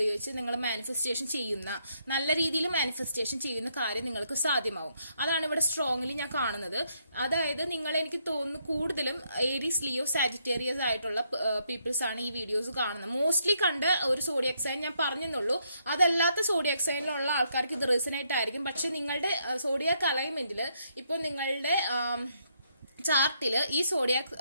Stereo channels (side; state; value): both; inverted; correlation -0.75